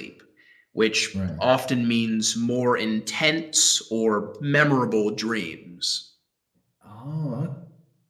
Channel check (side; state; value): both; identical; correlation 1.00